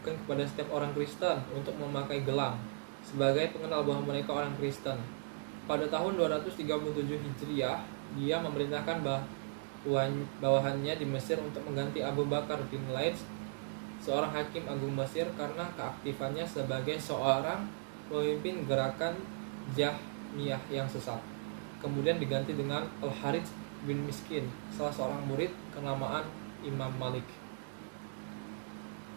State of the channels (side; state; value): left; silent; digital silence